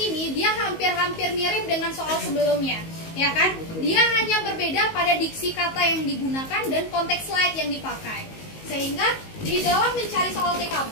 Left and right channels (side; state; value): right; late; 19 ms